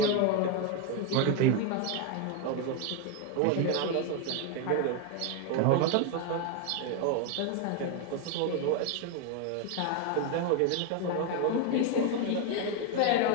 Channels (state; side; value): different; both; correlation 0.01